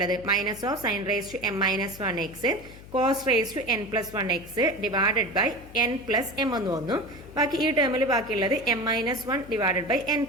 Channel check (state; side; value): noise; left; hum, 18 dB below the sound